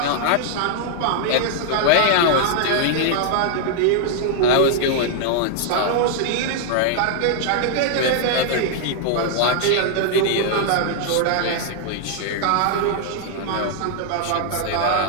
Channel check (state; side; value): different; both; correlation -0.01